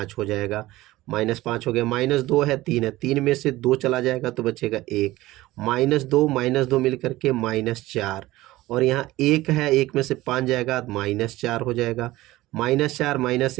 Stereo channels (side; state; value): left; quieter; 17.7 dB